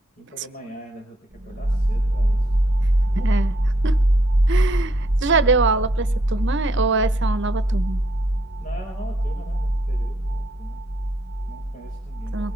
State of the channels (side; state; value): both; normal; correlation 0.71